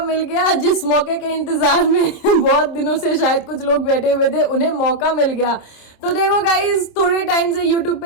गया। जिस मौके के इंतजार में बहुत दिनों से शायद कुछ लोग बैठे हुए थे, उन्हें मौका मिल गया। तो देखो गाइस, थोड़े टाइम से यूट्यूब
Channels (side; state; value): right; late; 26 ms